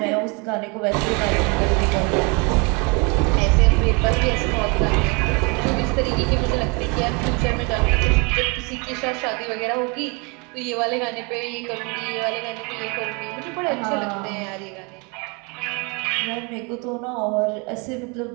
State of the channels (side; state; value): left; quieter; 30.8 dB